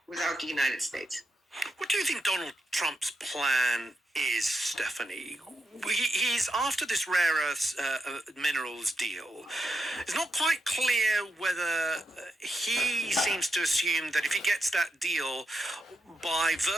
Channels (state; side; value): normal; both; correlation 0.85